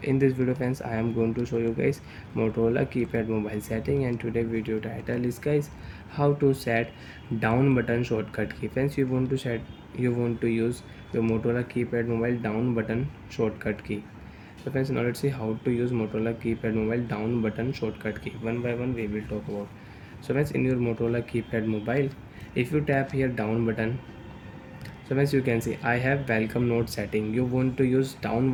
In this video friends, I am going to show you guys Motorola keypad mobile setting, and today video title is guys how to set down button shortcut key. Friends, you want to use your Motorola keypad mobile down button shortcut key. So friends, now let's see how to use Motorola keypad mobile down button shortcut key. One by one we will talk about. So friends, in your Motorola keypad mobile, if you tap here down button, so as you can see, I have welcome note setting. You want to use down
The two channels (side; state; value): both; identical; correlation 1.00